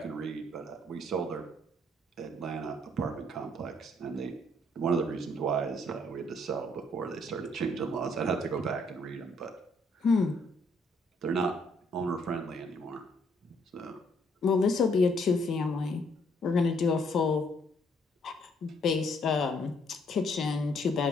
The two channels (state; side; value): normal; both; correlation 0.68